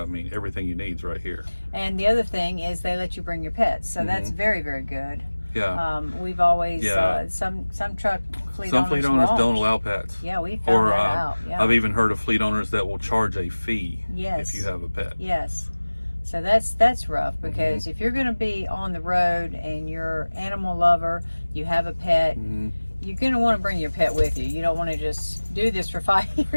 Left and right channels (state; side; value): inverted; both; correlation -1.00